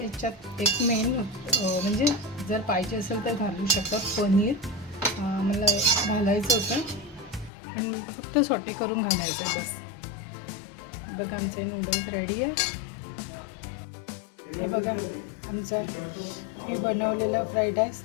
एक मेन म्हणजे जर पाहिजे असेल तर घालू शकतात पनीर. मला घालायचं होतं आणि फक्त सॉटे करून घालायचं बस. बघा आमचे नूडल्स रेडी आहे. हे बघा आमचा मी बनवलेला फ्राईड राईस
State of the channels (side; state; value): right; drops out; at 7.5 s